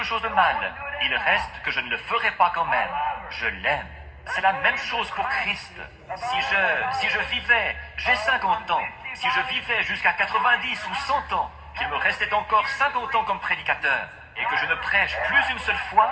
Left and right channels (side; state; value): both; identical; correlation 1.00